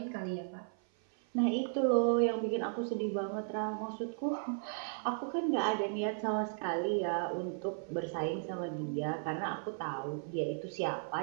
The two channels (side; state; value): left; silent; 54 dB below the other